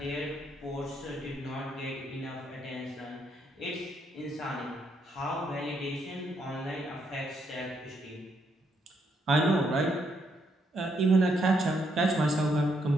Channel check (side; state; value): both; normal; correlation 0.75